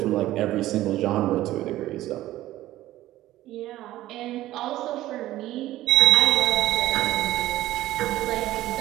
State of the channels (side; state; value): left; quieter; 15.2 dB